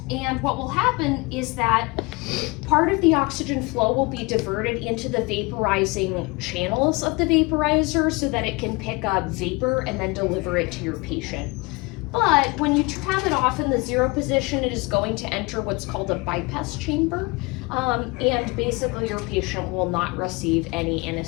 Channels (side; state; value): right; quieter; 25.8 dB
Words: And what will happen is that part of the oxygen flow will be diverted into the vaporizing channels of the vaporizer so that it can pick up vapor and then deliver it to your patient. But when you have it off in the 0 position, it is going to enter what's called a bypass chamber. And basically your patient will not receive any